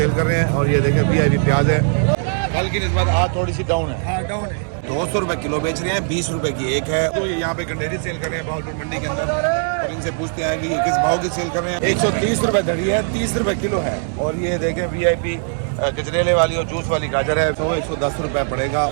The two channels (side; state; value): left; silent; 66 dB below the other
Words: कर रहे हैं। और ये देखें VIP प्याज है, कल की निस्बत आज थोड़ी सी डाउन है। हाँ डाउन है। 200 रुपए किलो बेच रहे हैं, 20 रुपए की एक है। तो ये यहाँ पे गंडेरी सेल कर रहे हैं भावलपुर मंडी के अंदर। और इनसे पूछते हैं कि ये किस भाव की सेल कर रहे हैं। 130 रुपए धड़ी है, 30 रुपए किलो है। और ये देखें VIP गजरेले वाली और जूस वाली गाजर है, तो 110 रुपए पड़ेगा।